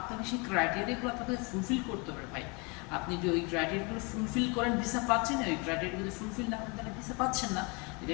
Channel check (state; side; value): quieter; right; 30.3 dB